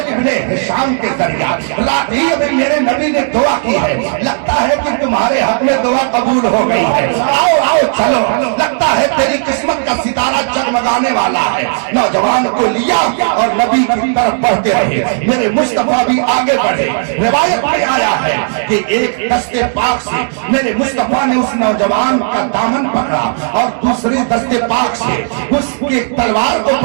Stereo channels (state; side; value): silent; left; digital silence